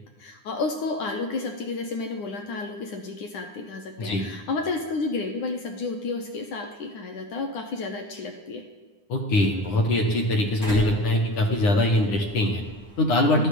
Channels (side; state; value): right; late; 9.8 ms